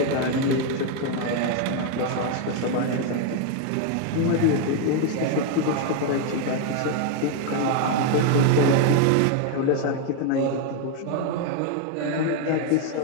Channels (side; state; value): both; different; correlation 0.00